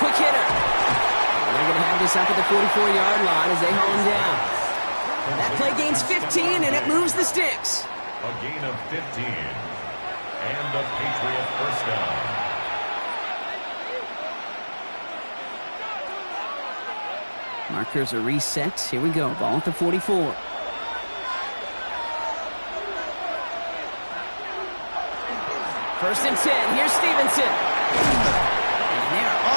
quick hitter. And they're going to have this up at the 44-yard line as they haul him down. That play gains 15, and it moves the sticks. A gain of 15. And a Patriot 1st down. Markers are reset. Here we go. Ball at the 44. First and 10. Here's Stevenson. And they're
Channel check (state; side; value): inverted; both; correlation -1.00